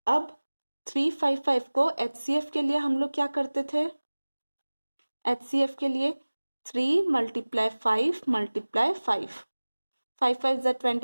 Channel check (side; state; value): both; inverted; correlation -1.00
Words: अब 3 5 5 को HCF के लिए हम लोग क्या करते थे, HCF के लिए 3 × 5 × 5, 5 5 जा